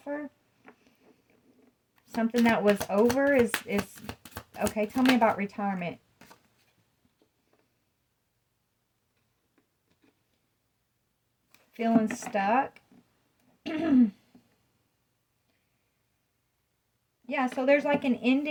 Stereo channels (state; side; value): identical; both; correlation 1.00